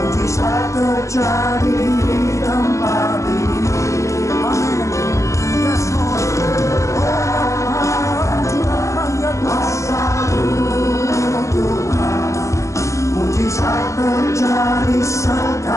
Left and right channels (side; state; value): right; late; 0.15 ms